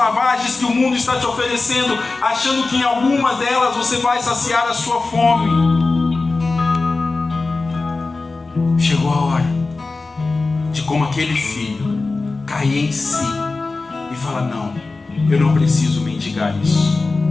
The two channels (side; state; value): right; quieter; 3.6 dB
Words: que o mundo está te oferecendo, achando que em algumas delas você vai saciar a sua fome. Chegou a hora de, como aquele filho, cair em si e falar: não, eu não preciso mendigar isso.